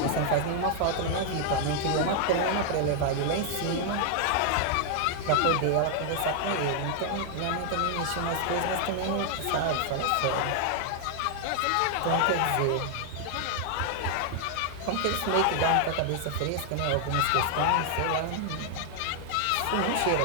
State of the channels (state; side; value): different; both; correlation 0.00